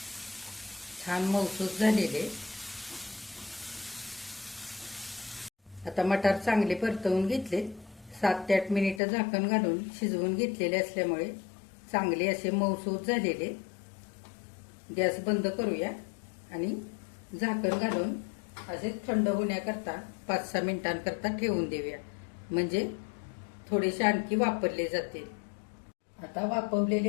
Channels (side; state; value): right; drops out; at 9.0 s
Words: छान मऊसूत झालेले. आता मटार चांगले परतवून घेतले. 7 ते 8 मिनिटं झाकण घालून शिजवून घेतलेले असल्यामुळे चांगले असे मऊसूत झालेले. गॅस बंद करूया आणि झाकण घालून असे थंड होण्याकरता 5-6 मिनिटांकरता ठेवून देऊया, म्हणजे थोडेसे आणखी वापरले जातील. आता